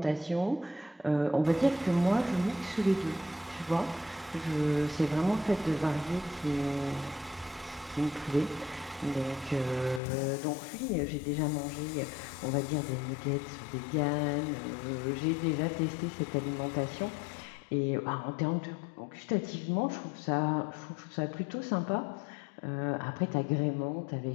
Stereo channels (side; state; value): right; drops out; at 10.0 s